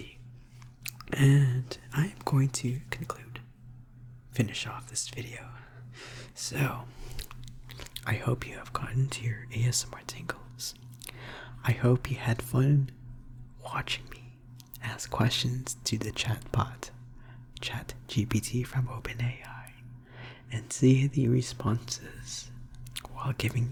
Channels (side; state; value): both; identical; correlation 1.00